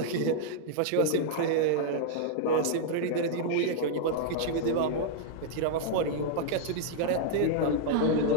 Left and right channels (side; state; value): both; different; correlation -0.01